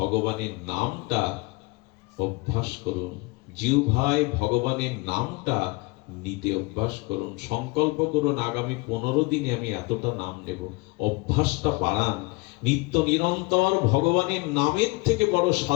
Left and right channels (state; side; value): quieter; right; 25.3 dB